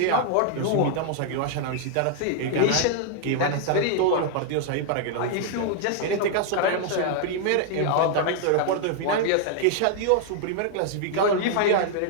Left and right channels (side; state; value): both; different; correlation 0.00